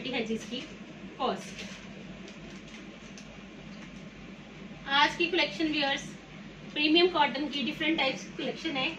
है जिसकी कॉस्ट। आज की कलेक्शन व्यूअर्स प्रीमियम कॉटन की डिफरेंट टाइप्स की कलेक्शन है।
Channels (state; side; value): identical; both; correlation 1.00